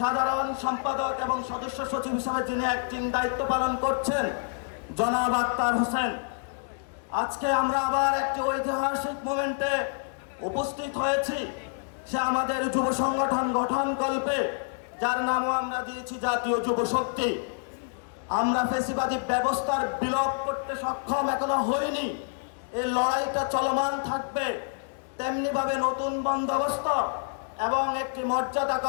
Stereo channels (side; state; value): right; silent; digital silence